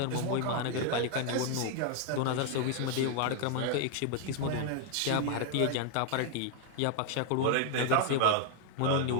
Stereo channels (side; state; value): both; different; correlation 0.00